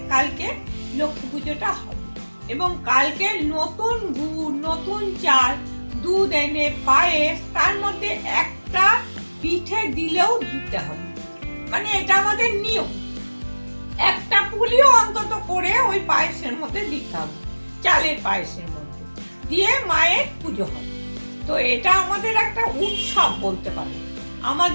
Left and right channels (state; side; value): inverted; both; correlation -1.00